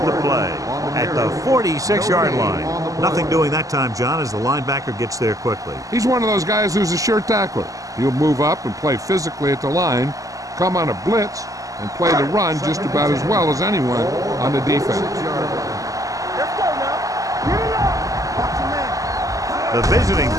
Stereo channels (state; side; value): late; left; 0.17 ms